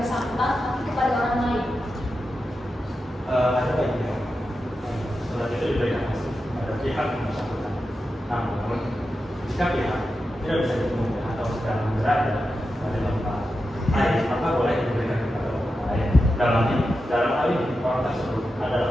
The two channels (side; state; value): both; normal; correlation 0.90